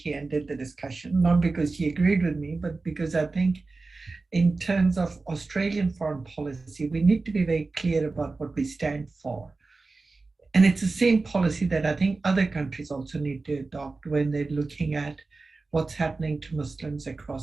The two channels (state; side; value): quieter; left; 3.7 dB